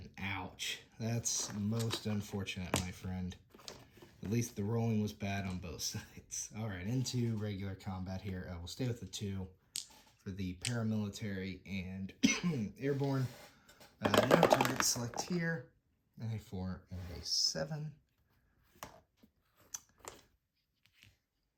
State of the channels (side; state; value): both; identical; correlation 1.00